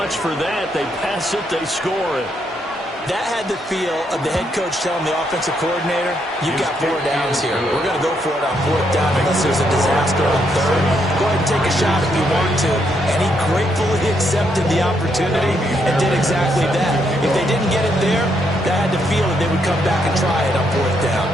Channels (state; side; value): normal; both; correlation 0.76